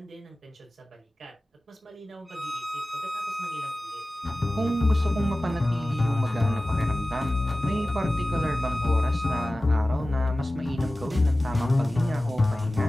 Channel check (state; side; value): normal; both; correlation 0.97